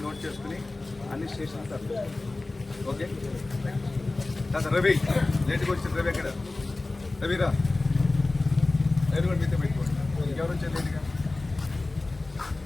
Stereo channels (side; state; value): right; quieter; 3.1 dB